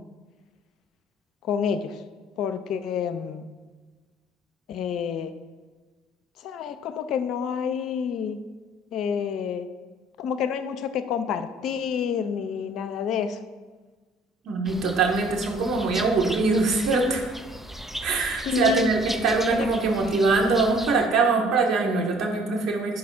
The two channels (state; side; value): normal; both; correlation 0.55